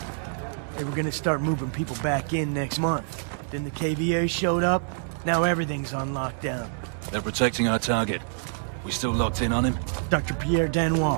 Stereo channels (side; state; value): left; silent; digital silence